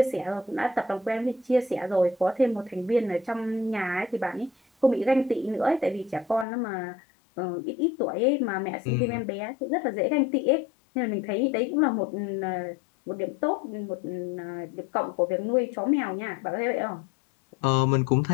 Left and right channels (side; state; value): right; drops out; at 6.5 s